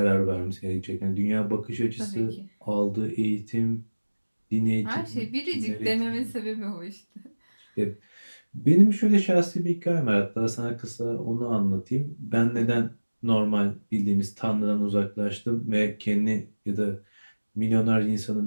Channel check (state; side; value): inverted; both; correlation -1.00